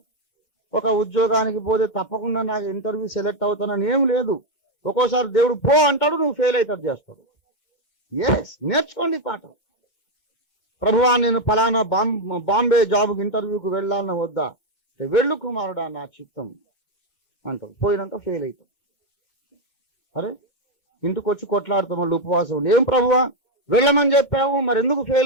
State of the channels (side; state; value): right; late; 2.2 ms